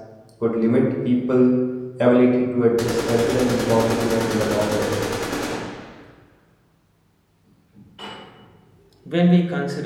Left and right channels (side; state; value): both; identical; correlation 1.00